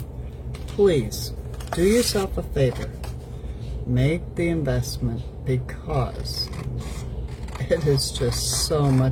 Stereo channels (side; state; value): both; identical; correlation 1.00